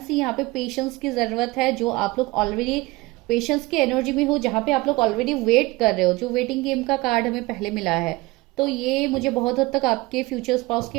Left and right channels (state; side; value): quieter; left; 21.7 dB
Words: सी यहाँ पे पेशेंस की जरूरत है, जो आप लोग ऑलरेडी पेशेंस की एनर्जी में हो, जहां पे आप लोग ऑलरेडी वेट कर रहे हो, जो वेटिंग गेम का कार्ड हमें पहले मिला है। तो ये मुझे बहुत हद तक आपके फ्यूचर स्पाउस के